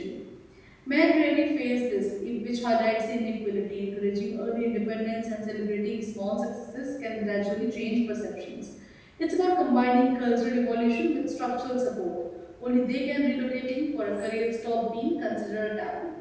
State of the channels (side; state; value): both; identical; correlation 1.00